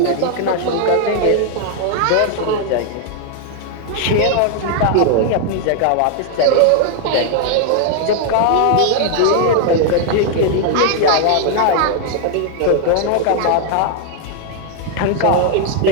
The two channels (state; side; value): different; both; correlation 0.00